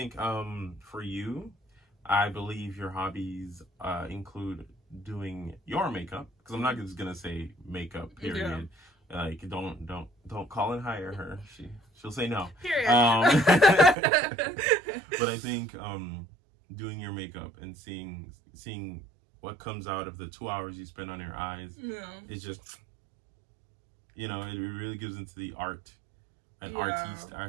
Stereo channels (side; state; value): left; drops out; at 14.0 s